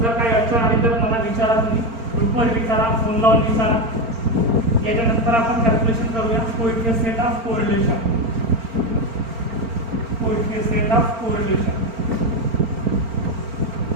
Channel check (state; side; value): late; left; 4.4 ms